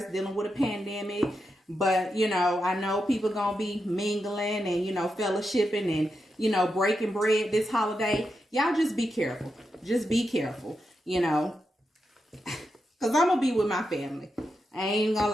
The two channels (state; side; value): normal; both; correlation 0.86